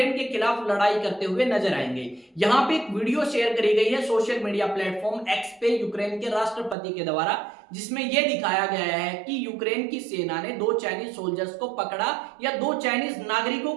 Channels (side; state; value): left; drops out; at 6.8 s